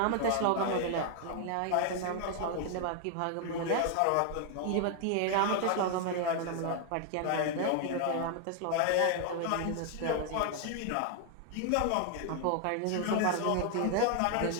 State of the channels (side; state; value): both; different; correlation 0.00